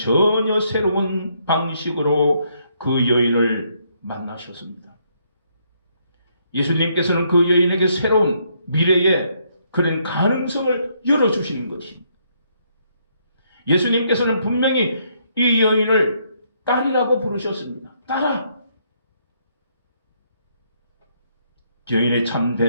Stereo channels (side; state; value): both; inverted; correlation -0.72